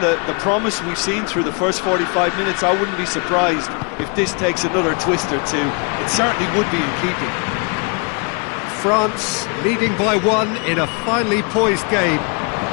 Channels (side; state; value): right; quieter; 34.4 dB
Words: promise we've seen through the first 45 minutes, I wouldn't be surprised if this takes another twist or two. It certainly would be in keeping. France leading by 1 in a finely poised game.